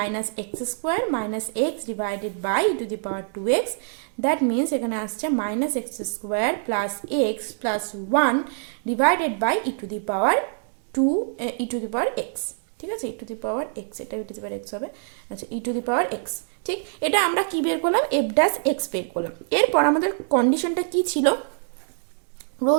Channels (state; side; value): silent; left; digital silence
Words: x square minus x divided by e to the power 2x, that means এখানে আসছে minus x square plus x plus 1 divided by e to the power 2 e to the power x, ঠিক আছে, ই to the power x, এটা ই to the power x হবে, আচ্ছা ই to the power x, ঠিক। এটা আমরা কি বের করলাম, এফ ড্যাশ এক্স বের করলাম। এরপর আমাদের কন্ডিশনটা কি ছিল